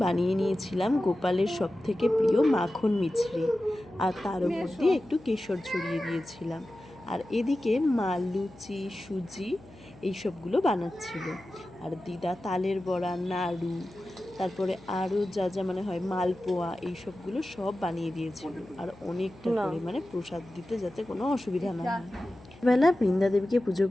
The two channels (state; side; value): noise; left; hum, 22 dB below the sound